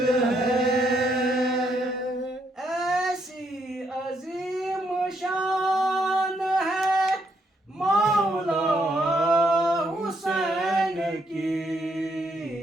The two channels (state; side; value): normal; both; correlation 0.75